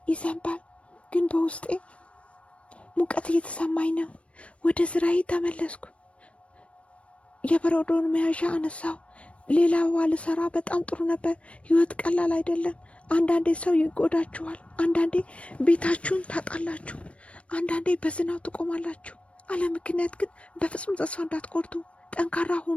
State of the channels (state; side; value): late; right; 0.062 ms